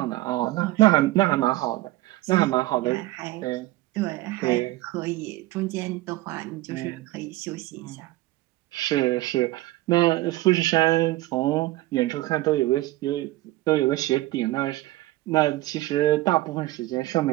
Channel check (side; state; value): left; quieter; 18.1 dB